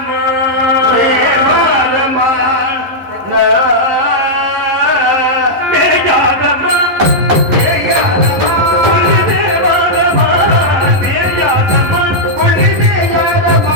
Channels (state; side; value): late; left; 11 ms